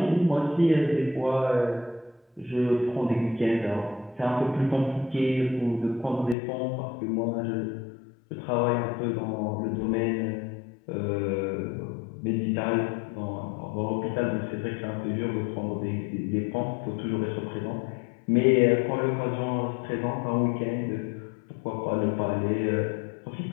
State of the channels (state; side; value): drops out; right; at 6.4 s